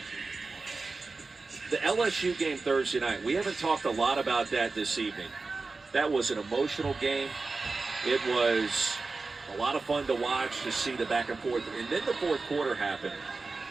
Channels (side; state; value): left; quieter; 3.9 dB